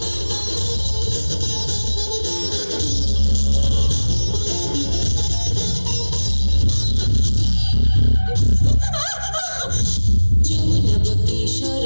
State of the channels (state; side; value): inverted; both; correlation -1.00